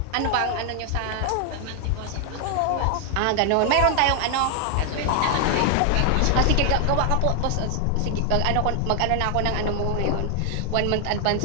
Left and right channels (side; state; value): both; different; correlation 0.00